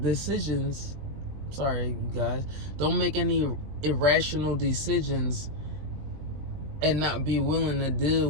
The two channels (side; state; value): left; late; 20 ms